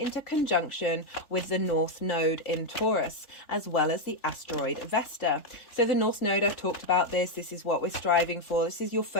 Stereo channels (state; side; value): late; right; 3.4 ms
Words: conjunction with the North Node in Taurus, as well as the asteroid Vesta. So the North Node, I've talked about this. This is what we're striving for. This is your